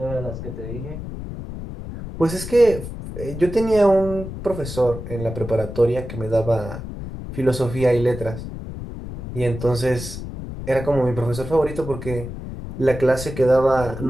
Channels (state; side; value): noise; left; rumble, 9 dB below the sound